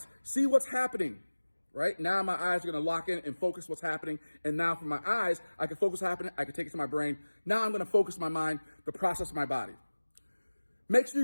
see what's happening, right? Now my eyes are going to lock in and focus what's happening. And now from my eyes, I can focus what's happening. I can take it to my brain. Now I'm going to focus my mind, the process of my body. Make sure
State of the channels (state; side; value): inverted; both; correlation -1.00